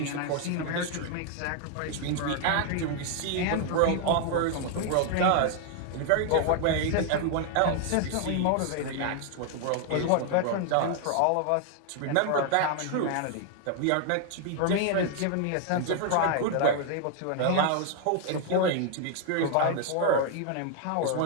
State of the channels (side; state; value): both; different; correlation 0.00